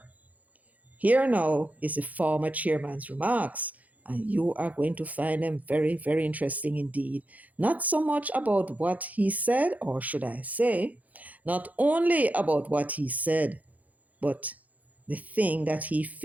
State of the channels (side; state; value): left; late; 0.076 ms